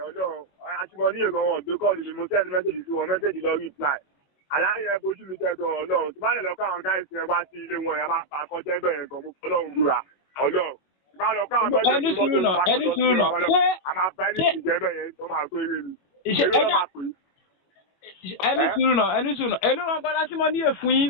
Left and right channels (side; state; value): right; late; 21 ms